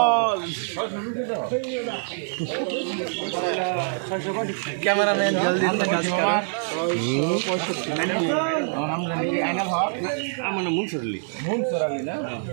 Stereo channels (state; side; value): silent; left; digital silence